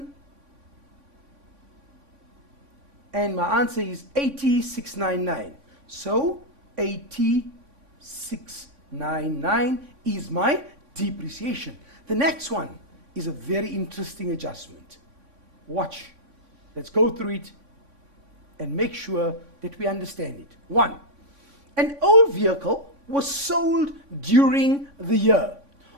And my answer is 80,699. So 80,699 is my depreciation. The next one is a very interesting adjustment. Watch. Let's go through it and make sure that we understand it. 1. An old vehicle was sold during the year.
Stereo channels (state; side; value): late; left; 3.5 ms